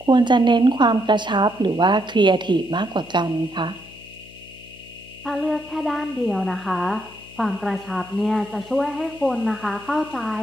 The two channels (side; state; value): left; noise; hum, 21 dB below the sound